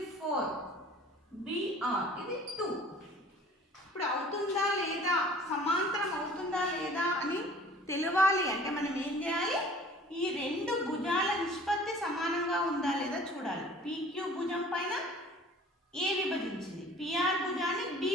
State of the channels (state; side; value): normal; both; correlation 0.49